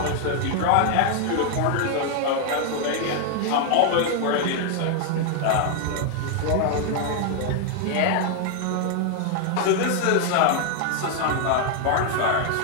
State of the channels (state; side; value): different; both; correlation 0.00